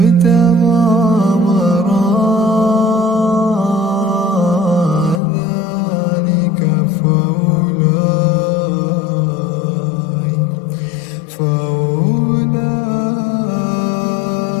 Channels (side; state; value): right; drops out; at 5.2 s